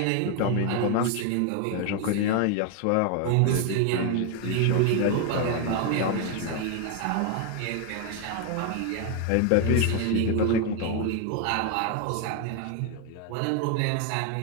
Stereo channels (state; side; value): different; both; correlation 0.01